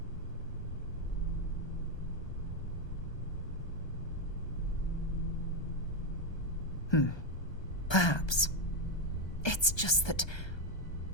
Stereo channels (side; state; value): right; late; 1.2 ms